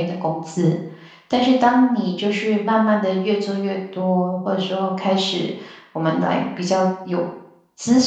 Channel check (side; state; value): both; identical; correlation 1.00